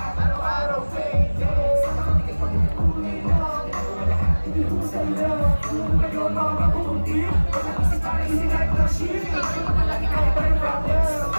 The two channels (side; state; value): both; inverted; correlation -1.00